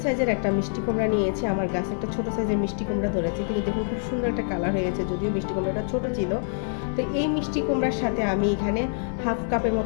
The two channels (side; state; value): right; silent; 61 dB below the other